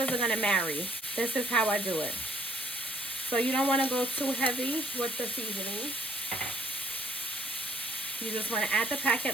are going to marry. This is how I do it. So you don't want to go too heavy with the seasoning. You just want to add the packet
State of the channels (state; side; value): normal; both; correlation 0.64